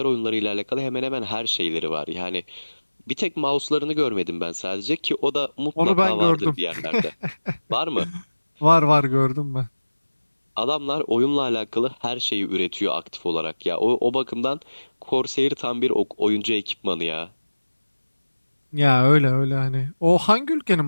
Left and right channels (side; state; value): both; inverted; correlation -1.00